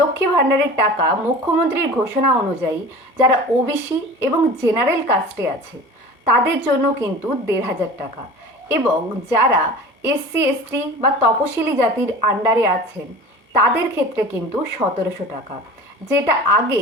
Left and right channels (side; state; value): both; normal; correlation 0.38